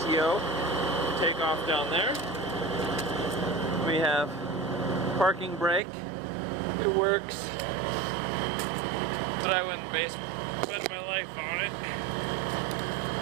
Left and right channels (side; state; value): left; drops out; at 5.8 s